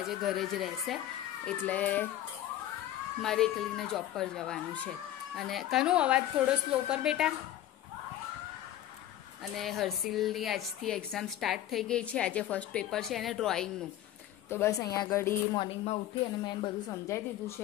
ઘરે જ રહેશે, એટલે મારે એકલીને જોબ પર જવાનું છે. અને કનો અવાજ થોડો સ્લો કર બેટા. અને હર્ષિલની આજથી એક્ઝામ સ્ટાર્ટ થઈ ગઈ છે. આજે ફર્સ્ટ પેપર છે એને ડ્રોઈંગનું. તો બસ અહીંયા આગળ મોર્નિંગમાં ઉઠી અને મેં બધું સમજાવી દીધું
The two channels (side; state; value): right; quieter; 12.7 dB